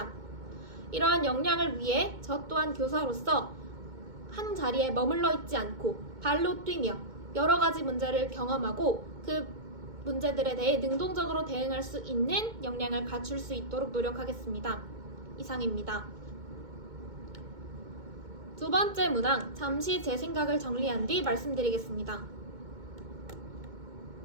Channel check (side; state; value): left; late; 2.2 ms